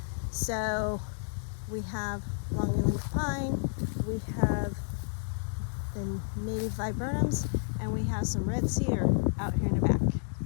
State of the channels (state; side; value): silent; right; digital silence